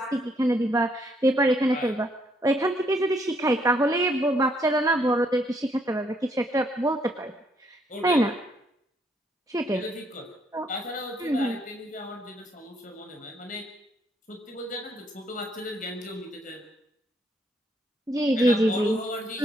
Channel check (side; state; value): both; normal; correlation 0.71